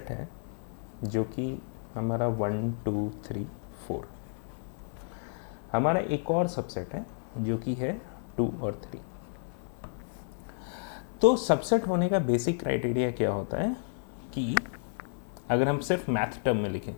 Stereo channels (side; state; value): right; silent; 57 dB below the other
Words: है जो कि हमारा 1 2 3 4, हमारा एक और सबसेट है जो कि है 2 और 3। तो सबसेट होने का बेसिक क्राइटेरिया क्या होता है कि अगर हम सिर्फ मैथ टर्म में लिखें,